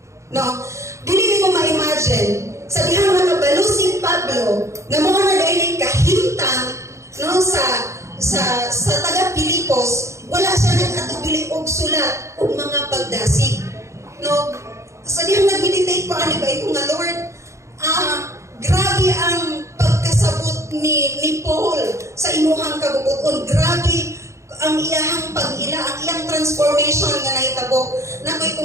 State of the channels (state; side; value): late; left; 0.14 ms